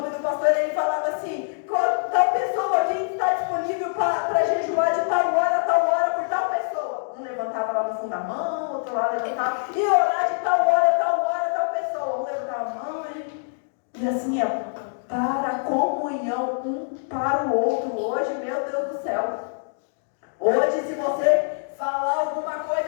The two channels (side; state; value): right; silent; digital silence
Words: do pastor. Ele falava assim: tal pessoa, quem está disponível para jejuar de tal hora por tal pessoa. Um levantava lá no fundo da mão, outro lá levantava, e orar de tal hora, tal pessoa. Um levantava a mão e assim é, para a comunhão, um para o outro. Hoje, meu Deus do céu, hoje se você falar alguma